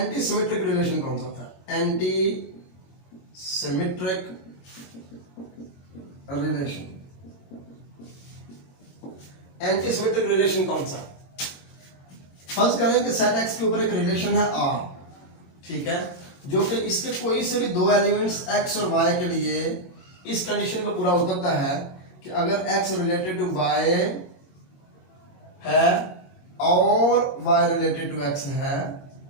सिमेट्रिक रिलेशन कौन सा होता है? Anti symmetric relation, anti symmetric relation कौन सा? फर्स्ट करें कि सेट एक्स के ऊपर एक रिलेशन है आर, ठीक है, जो कि इसके कोई से भी दो एलिमेंट्स एक्स और वाई के लिए इस कंडीशन को पूरा उतरता है कि अगर एक्स रिलेटेड टू वाई है और वाई रिलेटेड टू एक्स है,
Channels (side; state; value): right; late; 21 ms